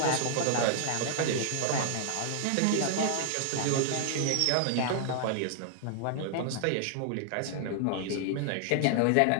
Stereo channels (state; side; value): different; both; correlation 0.00